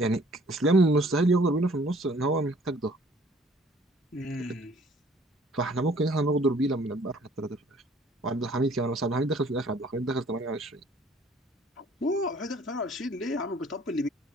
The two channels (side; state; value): both; normal; correlation 0.57